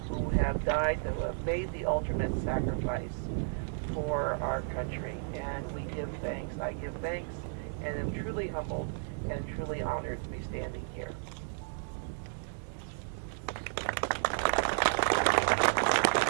who have died, who have made the ultimate sacrifice for our country. And we give thanks. I give thanks and am truly humbled and truly honored to be standing here.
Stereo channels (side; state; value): left; silent; digital silence